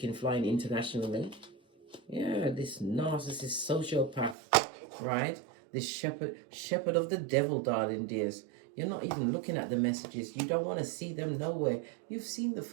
flying internationally. Yeah, this narcissist sociopath, right? This shepherd of the devil, darling dears. You're not even looking at the messages. You don't want to see them nowhere. You've seen the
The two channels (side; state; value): left; drops out; at 4.4 s